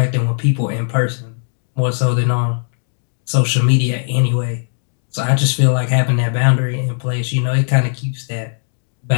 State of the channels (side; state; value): right; silent; digital silence